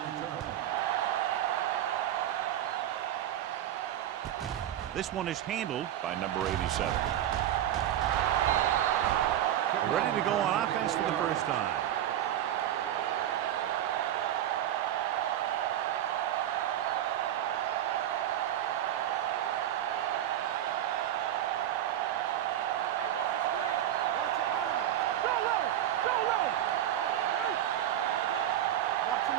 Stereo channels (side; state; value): left; quieter; 11.7 dB